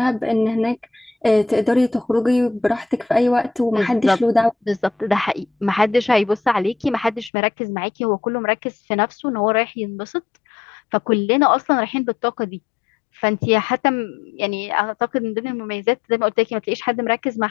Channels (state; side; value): drops out; right; at 7.3 s